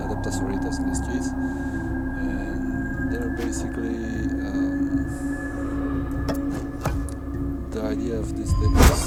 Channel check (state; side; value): identical; both; correlation 1.00